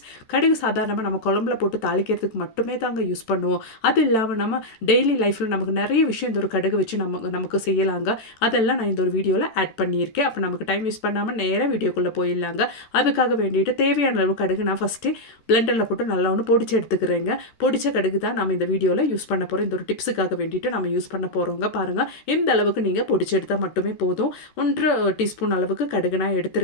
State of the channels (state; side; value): late; right; 13 ms